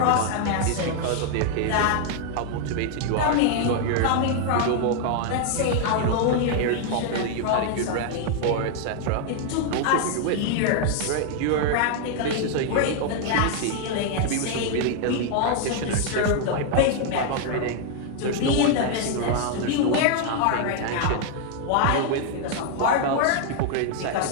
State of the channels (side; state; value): both; different; correlation 0.00